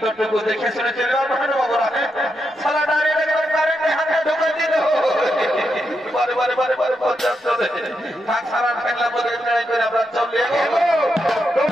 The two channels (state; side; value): normal; both; correlation 0.84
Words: তোটুকু দেখে শুনে চলে সালা ডাইরেক্ট কারেন্টে হাতে ঢুকে দিল বারে বারে বারে বারে পর্যাপ্ত থাক সারা ফেললা বলে ট্রাই করে আমরা চলে